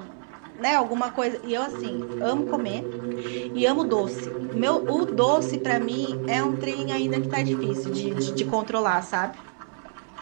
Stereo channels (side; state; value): left; silent; 56 dB below the other